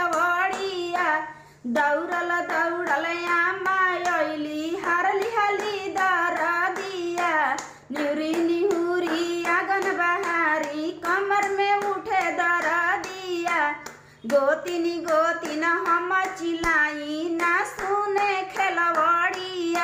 दौड़ल दौड़ल आमा अइली हरली हली दरदिया निहुरी निहुरी आंगन बहारी कमर में उठे दरदिया गोतिनी गोतिन हम चिलाई ना सुने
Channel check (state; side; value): identical; both; correlation 1.00